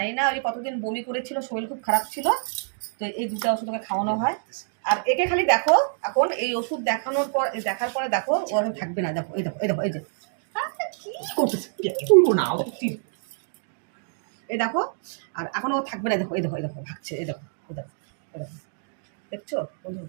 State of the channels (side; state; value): left; silent; digital silence